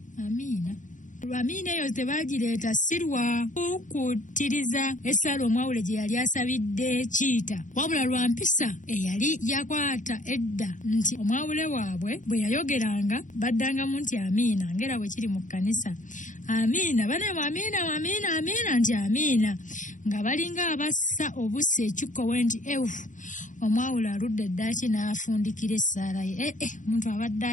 Amiina eyo tebagireeta si lwa kukkutiriza essala omwawule gye yali asabidde Kiita, wabula lwa mpisa eyali yakwata edda nti omwawule waabwe bwe yayogeranga baddangamu nti amiina, ngera bwe kiri mu kkanisa. Amiina banemu, amiina nti amiina, nga balinga abassa obusa ekikkowe nti omwawule aludde eddaaki n'afundikira essaala ye. Omuntu abadde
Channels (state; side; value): late; right; 0.37 ms